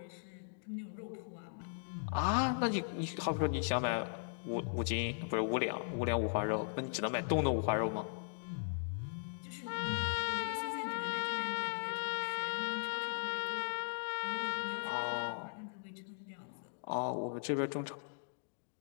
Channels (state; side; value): silent; right; digital silence